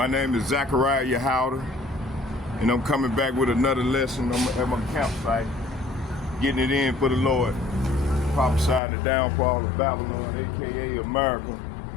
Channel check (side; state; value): right; drops out; at 8.8 s